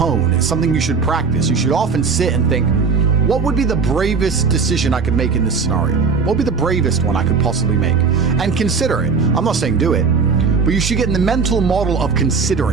It's something you should practice. You should often sit and think, what would be the bravest decision I could make in this scenario? What would be the bravest one I could possibly make? And consider it. I'm not saying do it, but you should get in the mental model of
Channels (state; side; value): quieter; left; 5.2 dB